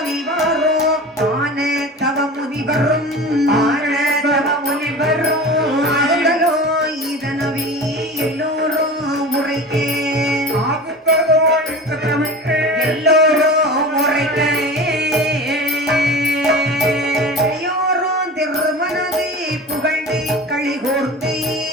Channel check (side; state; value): both; normal; correlation 0.34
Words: ஆன தவ முனிவரும் ஆனந்தவ முனிவரும் ஆதலோ இதனவி எல்லோரும் உரைக்கே எல்லோரும் முறைக்கே எல்லோரும் திருமனதை புகழ்ந்து களிகூர்ந்து